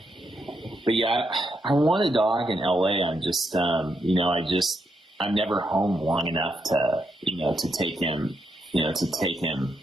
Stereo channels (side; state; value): both; normal; correlation 0.80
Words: But yeah, I want a dog in LA. I'm just, I'm never home long enough to take him